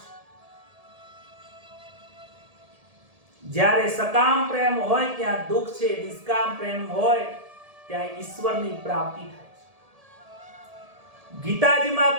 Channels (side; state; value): left; late; 1.7 ms